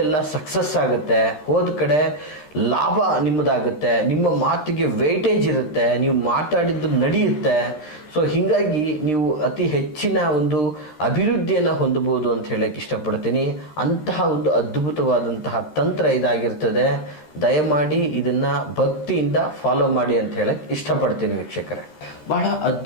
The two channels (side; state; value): right; late; 13 ms